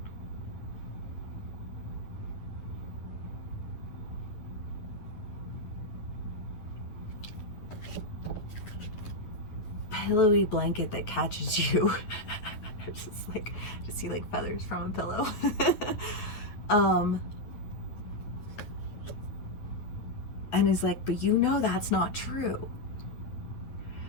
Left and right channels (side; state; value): right; late; 9.5 ms